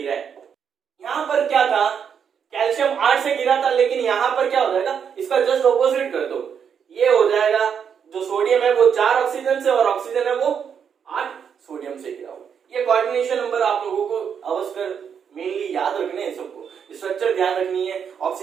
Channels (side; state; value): left; quieter; 7.4 dB